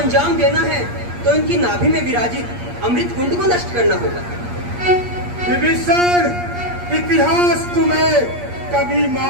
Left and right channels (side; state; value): left; late; 8.5 ms